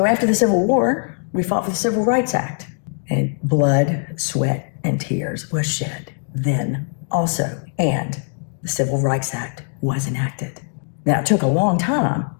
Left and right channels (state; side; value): silent; right; 64 dB below the other